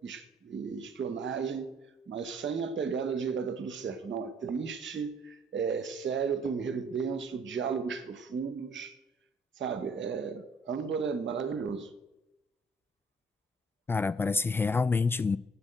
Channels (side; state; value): both; normal; correlation 0.60